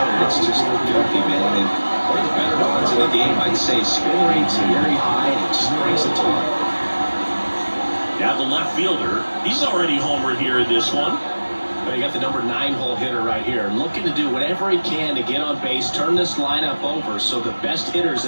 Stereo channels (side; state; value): both; inverted; correlation -1.00